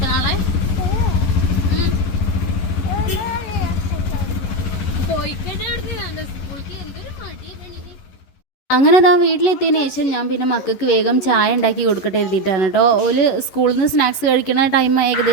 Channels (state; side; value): late; right; 11 ms